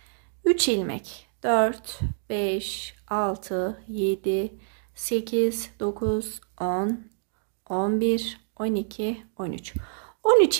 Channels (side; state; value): left; silent; digital silence